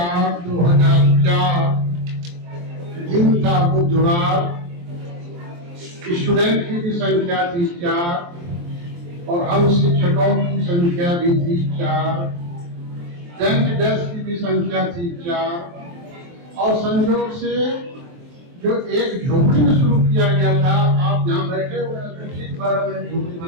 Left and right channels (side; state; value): left; late; 23 ms